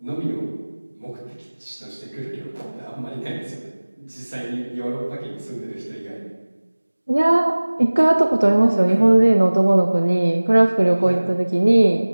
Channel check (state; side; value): inverted; both; correlation -1.00